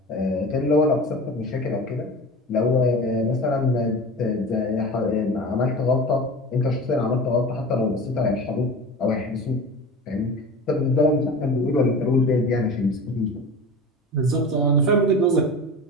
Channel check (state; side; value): normal; both; correlation 0.33